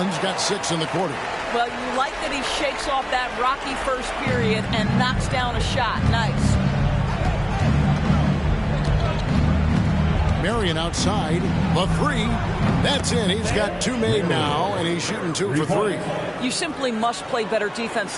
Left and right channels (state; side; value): identical; both; correlation 1.00